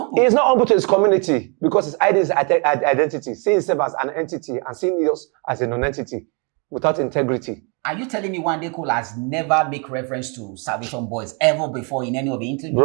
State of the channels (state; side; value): quieter; left; 34.5 dB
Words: He's not humble to his community because his identity, seeing himself as an entity and seeing us as a non-entity without integrity. Are you telling me Wande Cole has never make reference to Salvation Boys ever before in any of the interviews?